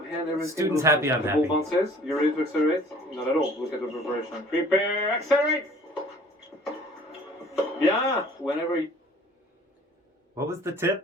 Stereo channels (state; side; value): normal; both; correlation 0.52